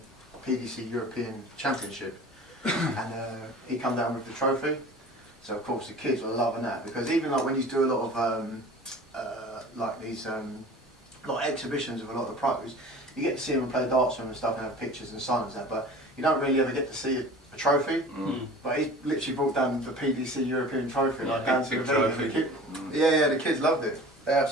PDC European Championship, and he come down with the trophy. So of course the kids were loving that, because even like when you do a lot of like these like exhibitions of a lot of the pros, you get to see them play darts with them and stuff and have pictures and signs and that, but you don't really ever get to see a trophy. But he literally brought down the PDC European trophy, like down to the venue. The kids loved it. They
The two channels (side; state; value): both; normal; correlation 0.41